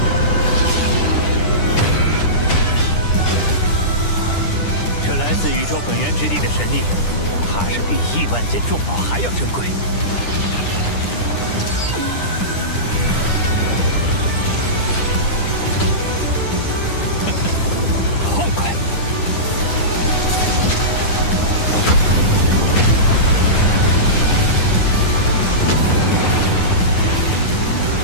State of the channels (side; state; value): right; late; 9.9 ms